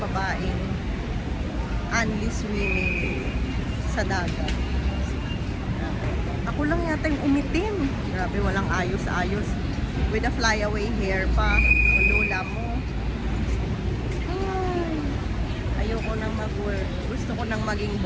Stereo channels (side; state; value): both; identical; correlation 1.00